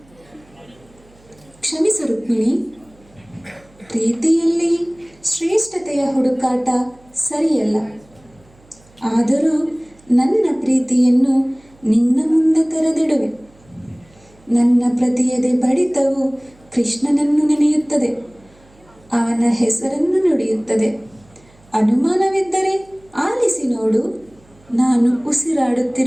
ಕ್ಷಮಿಸು ರುಕ್ಮಿಣಿ, ಪ್ರೀತಿಯಲ್ಲಿ ಶ್ರೇಷ್ಠತೆಯ ಹುಡುಕಾಟ ಸರಿಯಲ್ಲ. ಆದರೂ ನನ್ನ ಪ್ರೀತಿಯನ್ನು ನಿನ್ನ ಮುಂದೆ ತೆರೆದಿಡುವೆ. ನನ್ನ ಪ್ರತಿಯದೆ ಬಡಿತವು ಕೃಷ್ಣನನ್ನು ನೆನೆಯುತ್ತದೆ, ಅವನ ಹೆಸರನ್ನು ನುಡಿಯುತ್ತದೆ. ಅನುಮಾನವಿದ್ದರೆ ಆಲಿಸಿ ನೋಡು, ನಾನು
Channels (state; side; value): noise; right; hum, 29 dB below the sound